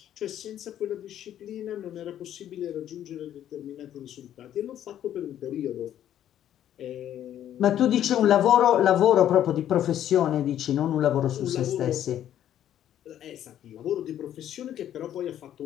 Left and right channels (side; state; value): right; quieter; 11.1 dB